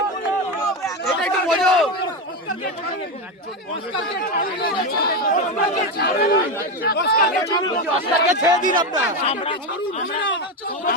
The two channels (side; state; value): both; normal; correlation 0.13